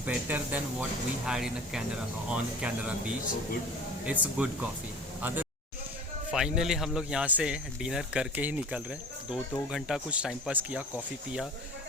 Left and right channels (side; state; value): both; normal; correlation 0.40